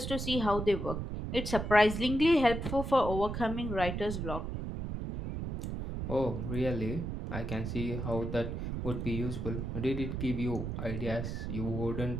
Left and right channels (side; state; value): right; noise; rumble, 4 dB below the sound